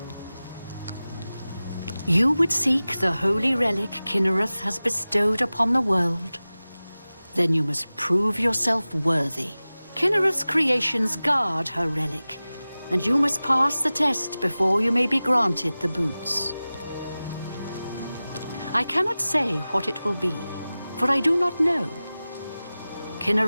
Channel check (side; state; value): both; inverted; correlation -0.97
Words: You would seek the holy relic Kinnereth has bestowed upon the world. Then you must prove yourself worthy. Kinnereth's creations guard her relic, and you must pass the test before you may be granted the boots. I cannot say what it will be, for I do not know.